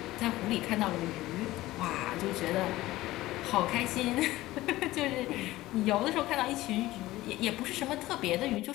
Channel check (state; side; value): quieter; right; 17.2 dB